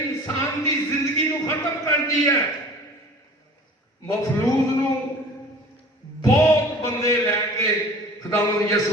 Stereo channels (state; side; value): normal; both; correlation 0.44